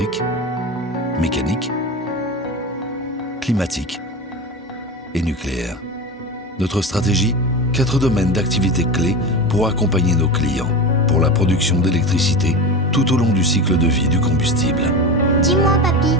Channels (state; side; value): normal; both; correlation 0.25